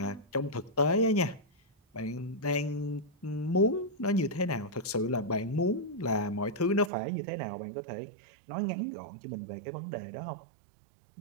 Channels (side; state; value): left; drops out; at 6.9 s